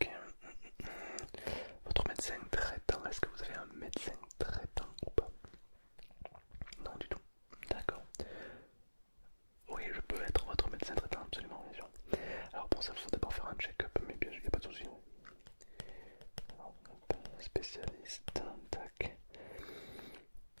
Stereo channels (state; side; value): inverted; both; correlation -1.00